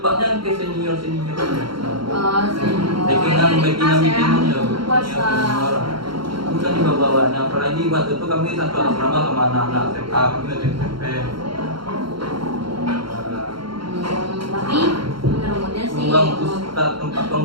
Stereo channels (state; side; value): late; left; 0.73 ms